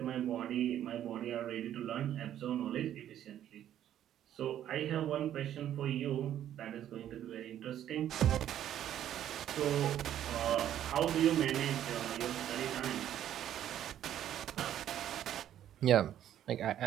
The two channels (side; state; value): left; quieter; 11.1 dB